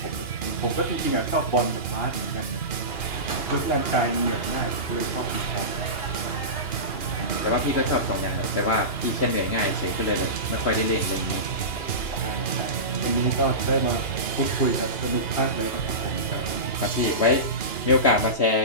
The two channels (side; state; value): right; late; 2.9 ms